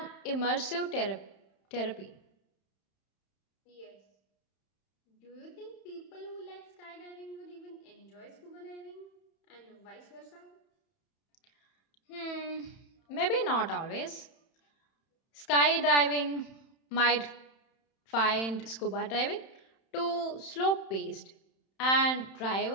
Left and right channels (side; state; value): right; late; 31 ms